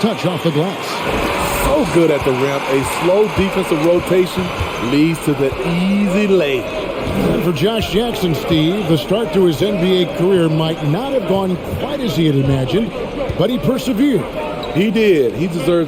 off the glass. So good at the rim. A slow defensive rotation leads to the easy lay. And for Josh Jackson, Steve, the start to his NBA career might not have gone quite as he had imagined, but he persevered. He did. He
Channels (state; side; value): identical; both; correlation 1.00